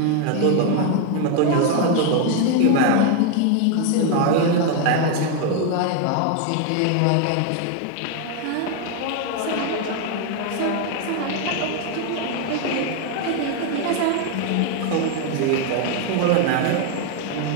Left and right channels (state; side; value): different; both; correlation 0.01